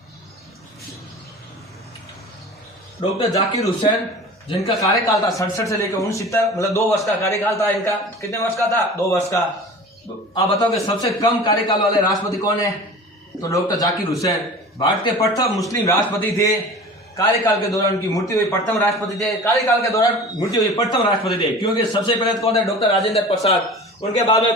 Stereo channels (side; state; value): both; normal; correlation 0.38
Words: डॉक्टर जाकिर हुसैन, जिनका कार्यकाल था 67 से लेकर 69, मतलब 2 वर्ष का कार्यकाल था इनका। कितने वर्ष का था? 2 वर्ष का। आप बताओ कि सबसे कम कार्यकाल वाले राष्ट्रपति कौन है? तो डॉक्टर जाकिर हुसैन भारत के प्रथम मुस्लिम राष्ट्रपति थे। कार्यकाल के दौरान उनकी मृत्यु हुई, प्रथम राष्ट्रपति थे। कार्यकाल के दौरान मृत्यु हुई, प्रथम राष्ट्रपति थे। क्योंकि सबसे पहले कौन है? डॉक्टर राजेंद्र प्रसाद। उनके बाद में